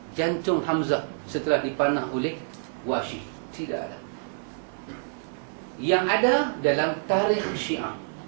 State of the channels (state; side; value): silent; left; digital silence